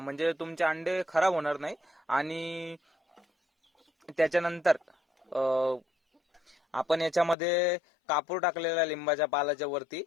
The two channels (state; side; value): drops out; right; at 7.4 s